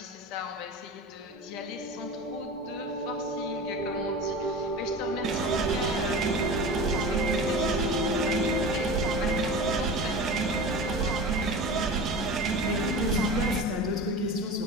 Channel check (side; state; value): both; normal; correlation 0.32